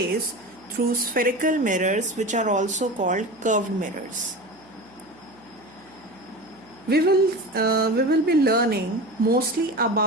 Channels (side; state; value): right; noise; hum, 28 dB below the sound